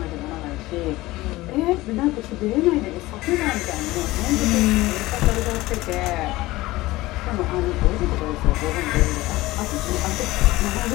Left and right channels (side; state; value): right; quieter; 18.7 dB